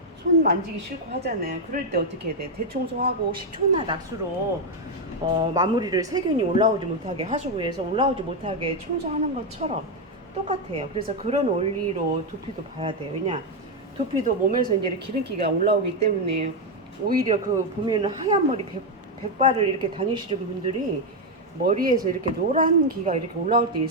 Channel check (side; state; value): both; normal; correlation 0.04